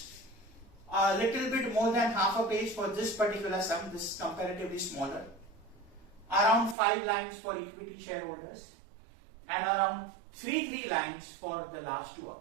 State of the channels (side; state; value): left; drops out; at 6.8 s